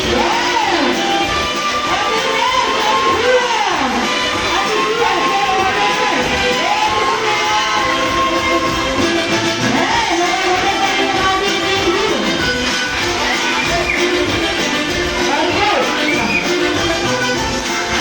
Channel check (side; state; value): both; identical; correlation 1.00